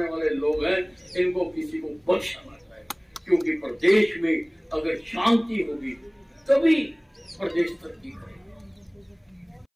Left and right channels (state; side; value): identical; both; correlation 1.00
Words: वाले लोग हैं, इनको किसी को बख्शा ना जाए, क्योंकि प्रदेश में अगर शांति होगी तभी प्रदेश तरक्की करेगा।